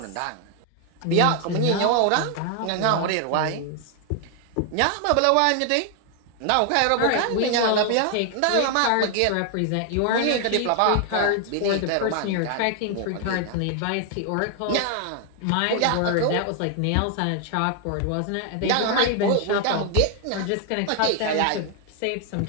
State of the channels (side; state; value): both; different; correlation 0.00